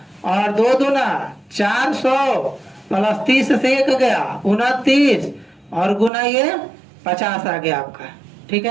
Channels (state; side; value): drops out; left; at 6.1 s